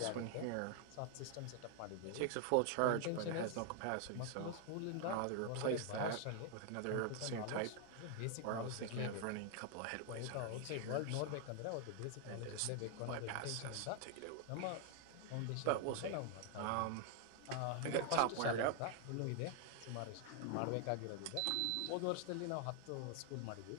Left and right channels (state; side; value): different; both; correlation 0.00